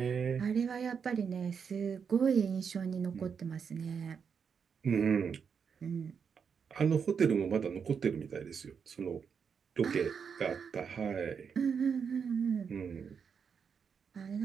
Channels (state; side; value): quieter; left; 6.5 dB